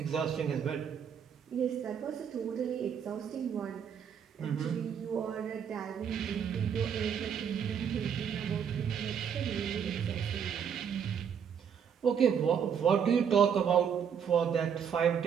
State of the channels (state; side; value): quieter; left; 7.7 dB